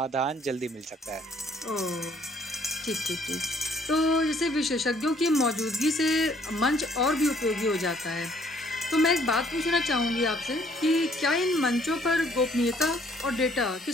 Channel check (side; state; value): both; normal; correlation 0.62